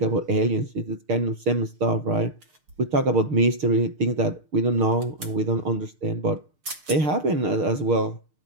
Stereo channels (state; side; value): late; left; 6.5 ms